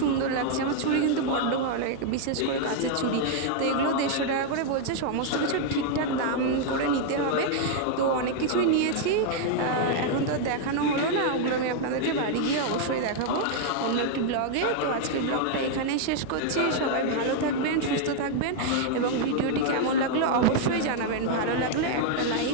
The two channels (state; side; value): different; both; correlation 0.00